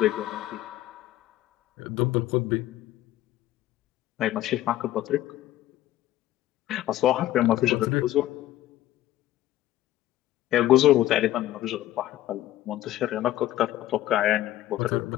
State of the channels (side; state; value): right; quieter; 14.2 dB